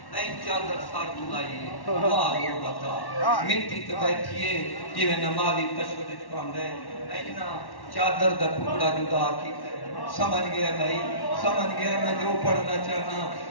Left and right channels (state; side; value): late; right; 1.1 ms